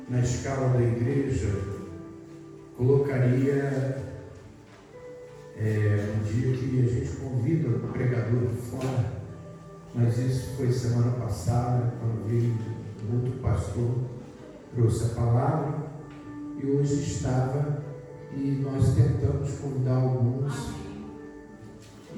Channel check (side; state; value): both; identical; correlation 1.00